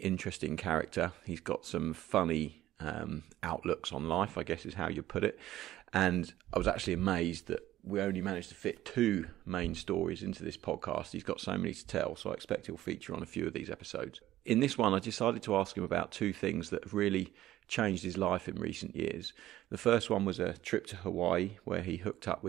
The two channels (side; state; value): left; quieter; 14.3 dB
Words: character. He's got some funny outlooks on life, I guess is how you put it. And I was actually amazed that we only managed to fit 2 main stories into this podcast. He's got so many to tell, so I expect he'll feature on a few of these episodes. In this one, I decided to ask him about 2 things that have really changed his life in recent years. The first one was a trip to Hawaii where he hooked up